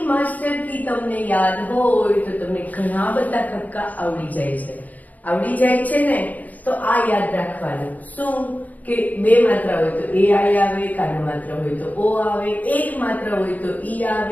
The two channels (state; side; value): late; right; 0.078 ms